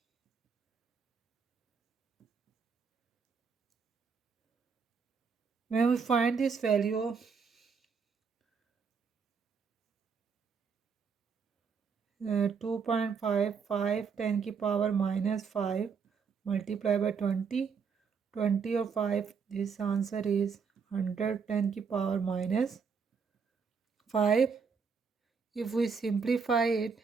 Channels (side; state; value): left; quieter; 5.8 dB